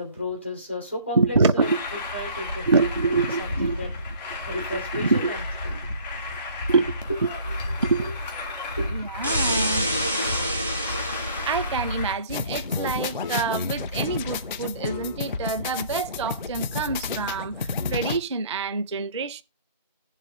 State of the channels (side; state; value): both; inverted; correlation -0.53